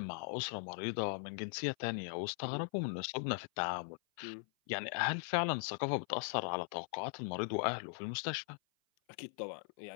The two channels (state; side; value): silent; right; 51 dB below the other